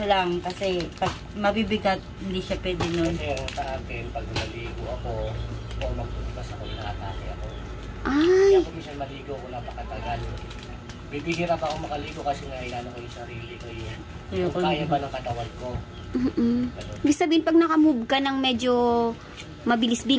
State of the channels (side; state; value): both; identical; correlation 1.00